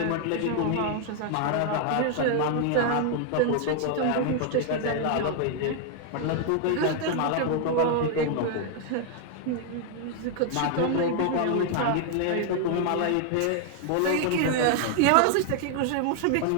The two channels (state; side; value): different; both; correlation 0.00